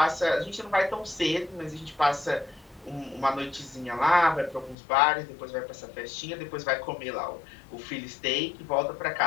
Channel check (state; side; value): drops out; right; at 4.8 s